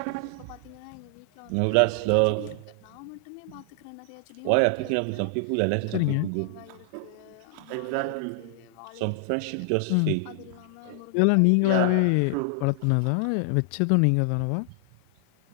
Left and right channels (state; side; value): different; both; correlation 0.00